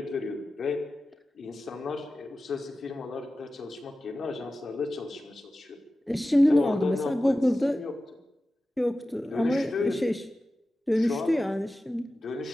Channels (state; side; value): normal; both; correlation 0.94